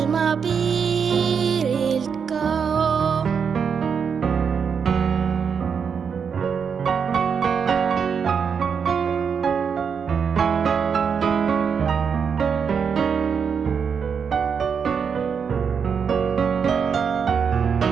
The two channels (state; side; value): quieter; left; 6.6 dB